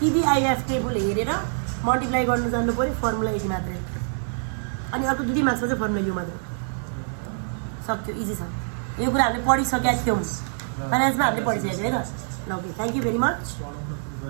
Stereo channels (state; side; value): silent; left; 62 dB below the other